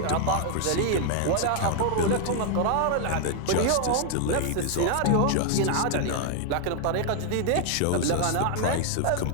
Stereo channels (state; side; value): different; both; correlation 0.00